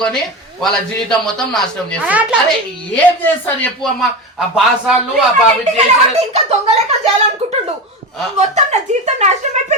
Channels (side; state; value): both; normal; correlation 0.22